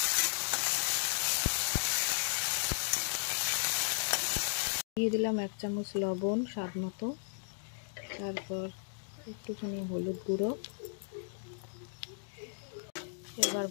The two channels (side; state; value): right; silent; digital silence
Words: দিয়ে দিলাম 1 চামচ লবণ স্বাদ মতো, তারপর একটুখানি হলুদ গুঁড়ো। এবার